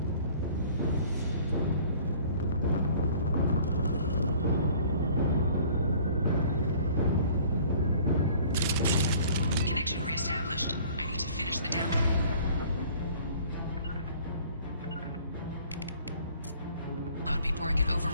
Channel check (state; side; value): inverted; both; correlation -0.52